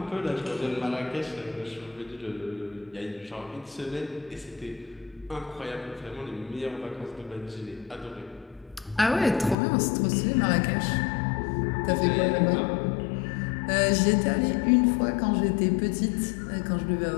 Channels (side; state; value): right; drops out; at 9.6 s